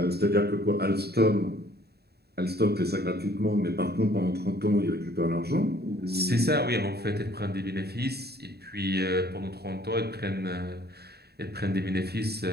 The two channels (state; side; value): late; left; 0.47 ms